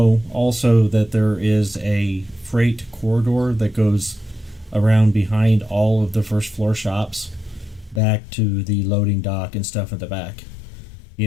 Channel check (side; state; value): right; drops out; at 8.0 s